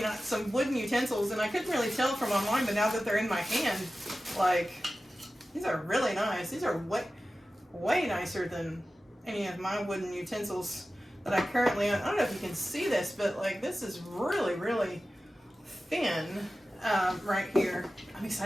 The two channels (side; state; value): both; normal; correlation 0.94